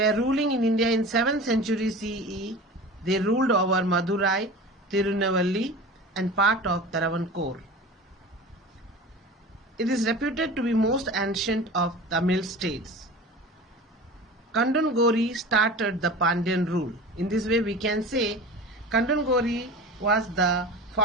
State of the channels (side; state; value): both; normal; correlation 0.35